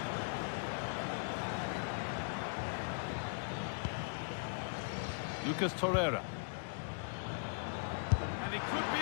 Lucas Torreira. And it could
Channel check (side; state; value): right; silent; digital silence